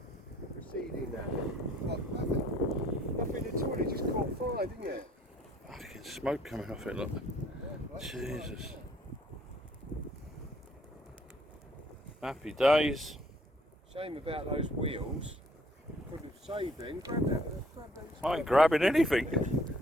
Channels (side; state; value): both; normal; correlation 0.61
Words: Proceeding now. What, nothing? Nothing at all, it just caught fire, didn't it? Fucking smoke coming off it, look. Jesus. Happy days. Shame about those wheels. Could have saved them. Grab that. I ain't grabbing anything.